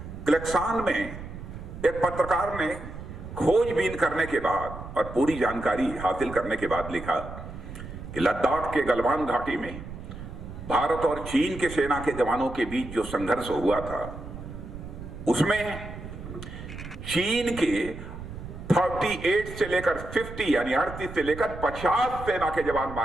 क्लेक्सान में एक पत्रकार ने खोजबीन करने के बाद और पूरी जानकारी हासिल करने के बाद लिखा कि लद्दाख के गलवान घाटी में भारत और चीन के सेना के जवानों के बीच जो संघर्ष हुआ था उसमें चीन के 38 से लेकर 50 यानी 38 से लेकर 50 सेना के जवान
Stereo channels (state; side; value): noise; right; rumble, 11 dB below the sound